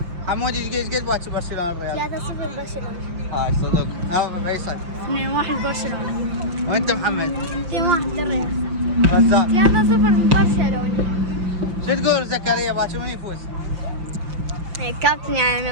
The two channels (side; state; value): left; late; 5.9 ms